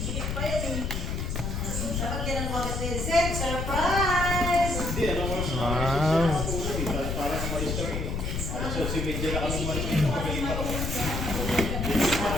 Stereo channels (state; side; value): noise; left; rumble, 2 dB below the sound